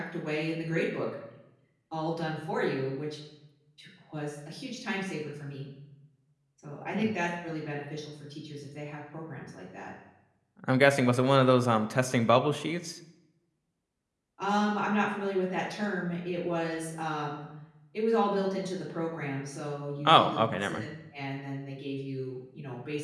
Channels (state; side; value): identical; both; correlation 1.00